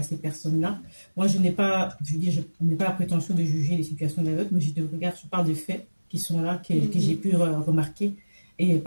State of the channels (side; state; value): both; inverted; correlation -1.00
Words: personnes-là. Moi, je n'ai pas la prétention de juger les situations des autres, mais je parle de faits qui sont là, que j'ai pu remarquer. Et